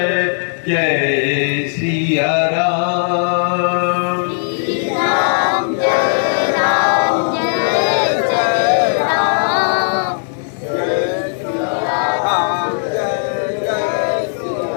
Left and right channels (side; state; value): right; silent; digital silence